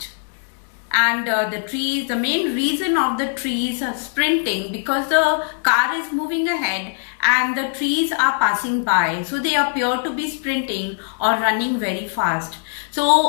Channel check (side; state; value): right; silent; 65 dB below the other